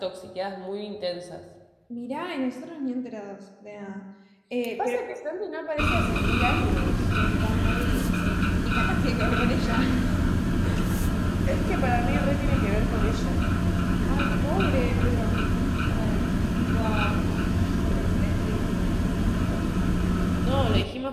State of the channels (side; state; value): both; identical; correlation 1.00